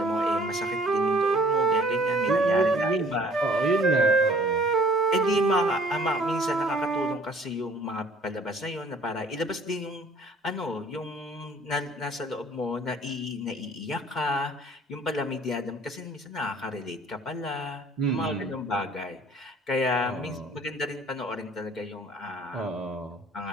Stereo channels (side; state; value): both; normal; correlation 0.55